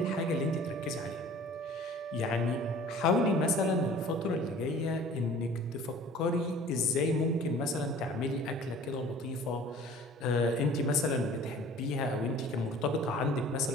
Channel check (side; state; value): both; normal; correlation 0.47